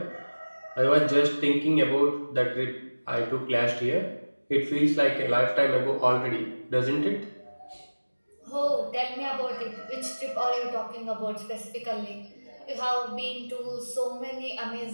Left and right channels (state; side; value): inverted; both; correlation -1.00